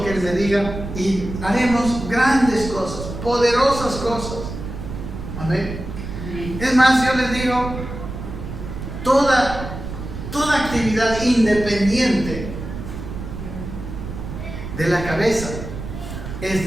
que Él me diga y haremos grandes cosas, poderosas cosas. Amén. Es más, yo les digo, toda actividad independiente de la cabeza es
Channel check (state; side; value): noise; right; rumble, 8 dB below the sound